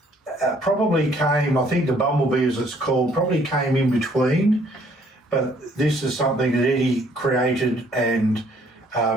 probably came, I think the Bumblebee, as it's called, probably came in between, but this is something that Eddie created and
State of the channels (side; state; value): both; normal; correlation 0.63